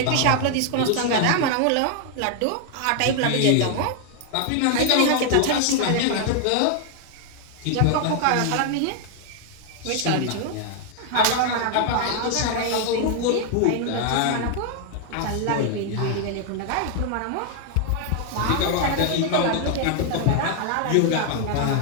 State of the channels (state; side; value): different; both; correlation 0.00